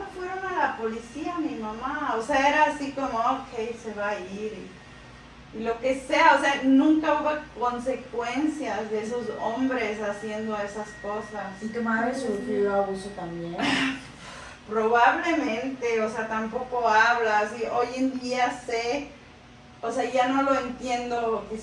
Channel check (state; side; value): identical; both; correlation 1.00